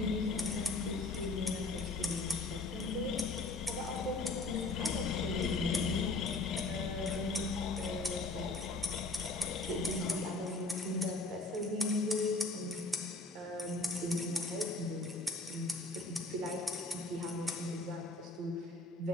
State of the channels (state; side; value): quieter; right; 3.2 dB